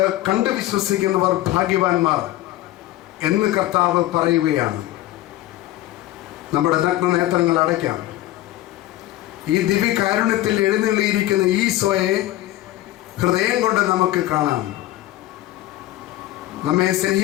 കണ്ട് വിശ്വസിക്കുന്നവർ ഭാഗ്യവാന്മാർ എന്ന് കർത്താവ് പറയുകയാണ്. നമ്മുടെ നഗ്ന നേത്രങ്ങൾ അടയ്ക്കാം. ഈ ദിവ്യകാരുണ്യത്തിൽ എഴുന്നള്ളിയിരിക്കുന്ന ഈശോയെ ഹൃദയം കൊണ്ട് നമുക്ക് കാണാം. നമ്മെ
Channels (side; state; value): right; quieter; 15.5 dB